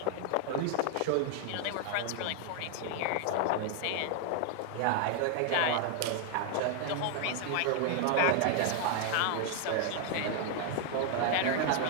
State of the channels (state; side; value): different; both; correlation 0.00